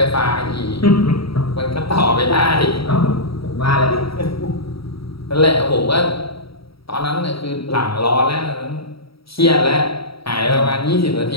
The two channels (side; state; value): right; late; 0.75 ms